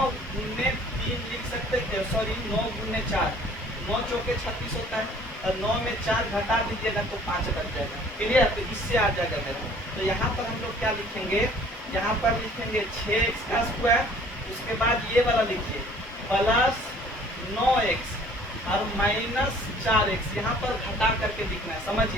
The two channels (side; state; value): both; normal; correlation 0.54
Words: गुने 3 लिख सकते हैं, सॉरी 9 गुने 4, 9 चौके 36 होता है, और 9 में 4 घटा दीजिएगा तो 5 बच जाएगा। क्लियर? तो इससे आ जाएगा मेरा। तो यहाँ पर हम लोग क्या लिखेंगे, यहाँ पर लिखेंगे 6x का स्क्वायर, उसके बाद ये वाला लिखिए प्लस 9x और -4x, यहाँ पर घटा करके लिखना है,